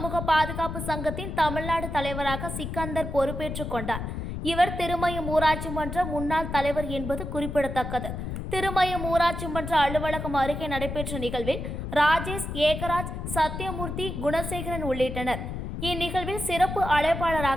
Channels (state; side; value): noise; left; rumble, 5 dB below the sound